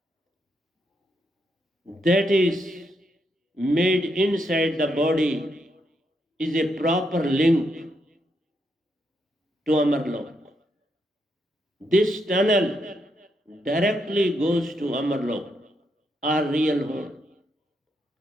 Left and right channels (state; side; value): normal; both; correlation 0.79